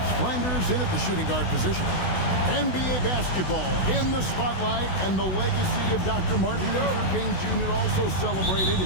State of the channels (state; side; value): late; right; 16 ms